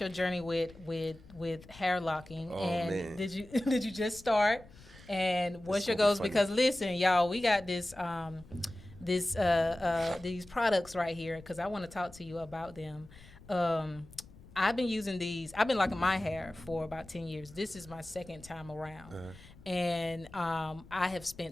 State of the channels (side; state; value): left; noise; rumble, 21 dB below the sound